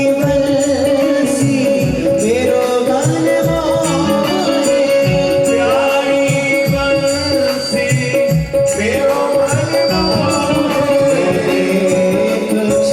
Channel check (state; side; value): identical; both; correlation 1.00